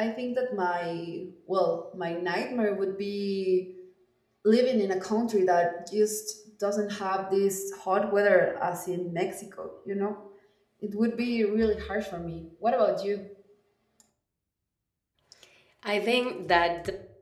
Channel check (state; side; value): identical; both; correlation 1.00